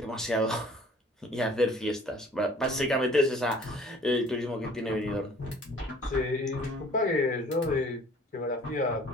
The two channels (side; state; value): both; normal; correlation 0.52